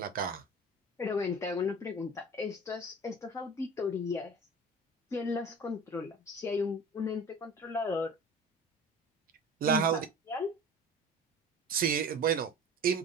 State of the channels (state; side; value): normal; both; correlation 0.38